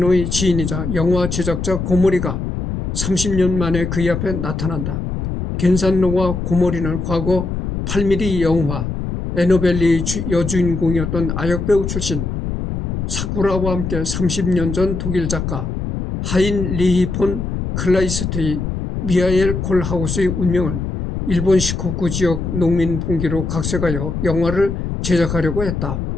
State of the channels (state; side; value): noise; left; rumble, 4 dB below the sound